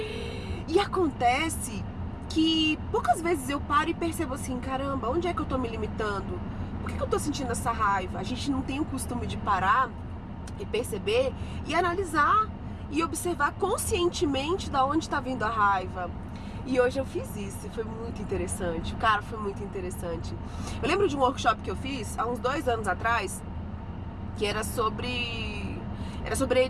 E acontece que poucas vezes eu paro e percebo assim, caramba, onde é que eu tô me limitando? Por que eu tô sentindo essa raiva? A gente não tem o costume de parar e perceber e analisar e observar conscientemente da onde tá vindo a raiva. E hoje eu fiz isso, foi muito interessante, cara, foi muito interessante. Eu lembro de um workshop que eu fiz há uns 2 anos atrás, que era sobre a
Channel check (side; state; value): both; identical; correlation 1.00